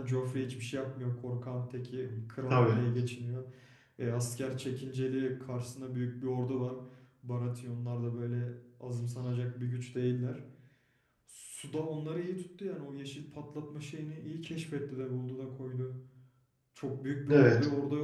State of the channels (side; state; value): both; identical; correlation 1.00